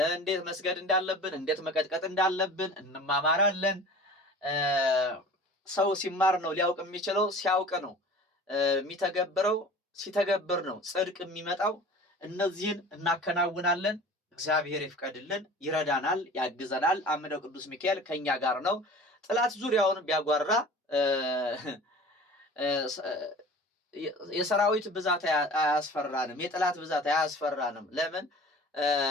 እንዴት መስገድ እንዳለብን፣ እንዴት መቀጥቀጥ እንዳለብን እንማማራለን። ሰው ሲማር ነው ሊያውቅ የሚችለው። ሲያውቅ ነው የሚተገብረው። ሲተገብር ነው ጽድቅ የሚመጣው። እነዚህን እናከናውናለን። እግዚአብሔር ይፍቀድልን፣ ይረዳናል፣ ያግዘናል። አምደው ቅዱስ ሚካኤል ከኛ ጋር ነው። ጥላት ዙሪያውን ቢያጓራ የሰራዊት ብዛት አያስፈራንም፣ የጥላት ብዛት አያስፈራንም። ለምን?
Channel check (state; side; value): normal; both; correlation 0.42